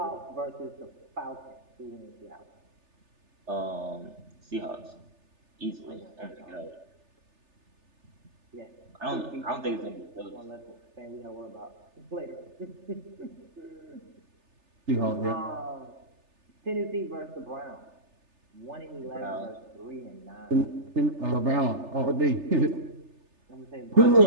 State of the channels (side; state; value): left; late; 3.3 ms